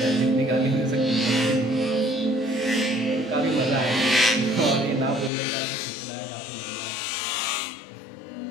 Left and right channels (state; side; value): drops out; right; at 5.3 s